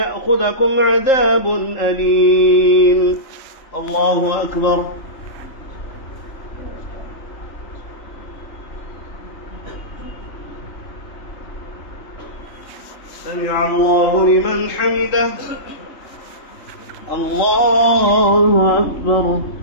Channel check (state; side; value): late; right; 3.7 ms